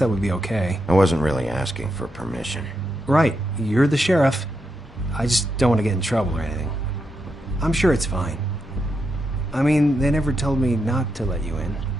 would be okay. I wasn't really asking for permission. Right, you're the sheriff. I just don't want to get in trouble or anything. I'm sure it's fine. I mean, they never told me not to let you in.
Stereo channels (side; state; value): both; normal; correlation 0.84